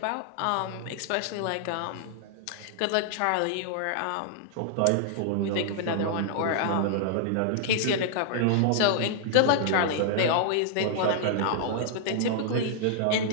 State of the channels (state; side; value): different; both; correlation -0.01